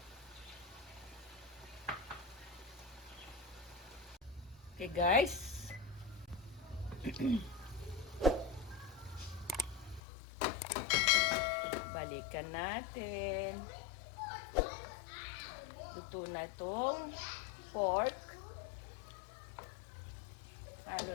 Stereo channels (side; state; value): right; drops out; at 10.0 s